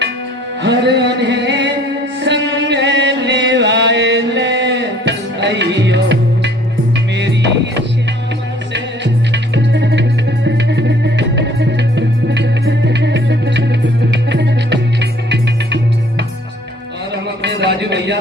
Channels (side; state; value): both; normal; correlation 0.57